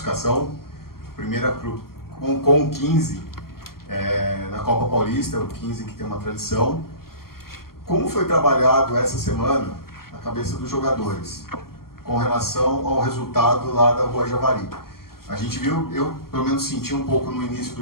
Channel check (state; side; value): late; right; 0.93 ms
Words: Primeira com o 15 na Copa Paulista, o 15 que tem uma tradição. Como foi trabalhado essa semana a cabeça dos jogadores com relação ao resultado lá da Rua Javari? A gente viu, eu pelo menos senti um pouco no início